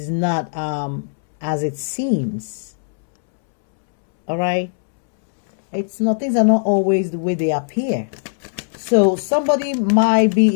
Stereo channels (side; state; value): right; silent; 66 dB below the other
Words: not as it seems. All right? Things are not always the way they appear. So somebody might